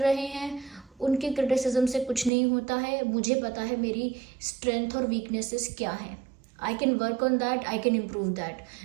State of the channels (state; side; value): drops out; left; at 2.3 s